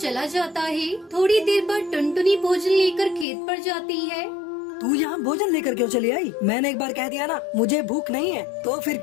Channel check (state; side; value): drops out; right; at 3.2 s